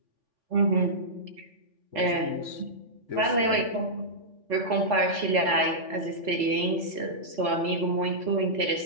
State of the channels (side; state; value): left; late; 4.0 ms